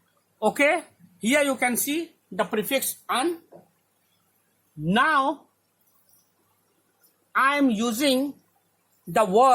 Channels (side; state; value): both; identical; correlation 1.00